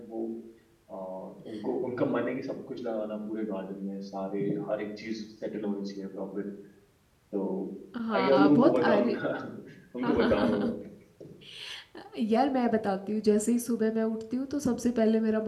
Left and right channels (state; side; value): identical; both; correlation 1.00